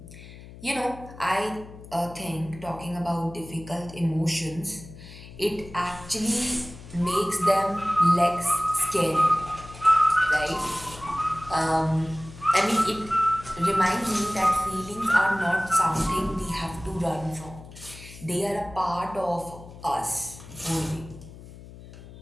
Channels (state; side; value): noise; left; hum, 17 dB below the sound